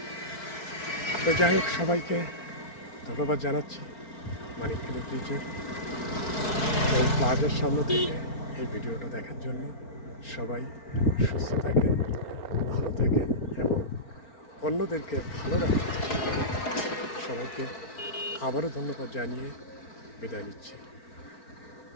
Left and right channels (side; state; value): right; late; 4.4 ms